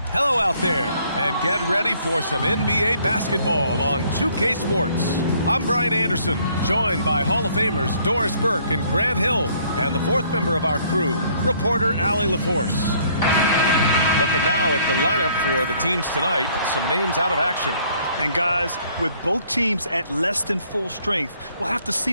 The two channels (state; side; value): inverted; both; correlation -0.63